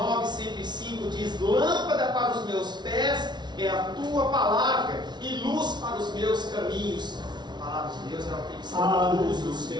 105 diz: lâmpada para os meus pés é a tua palavra e luz para os meus caminhos. A palavra de Deus ela tem que ser a luz dos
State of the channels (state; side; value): late; left; 0.20 ms